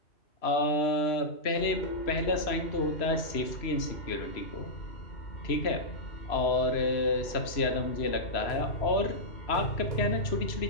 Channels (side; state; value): right; late; 3.0 ms